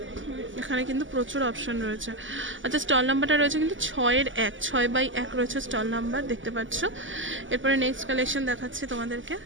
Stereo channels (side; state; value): left; late; 0.56 ms